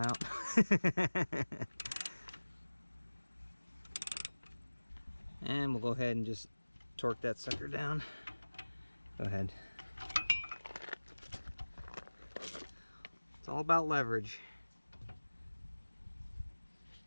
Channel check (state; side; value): inverted; both; correlation -1.00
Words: And we'll go ahead and just torque that sucker down. Go ahead. It's all about leverage.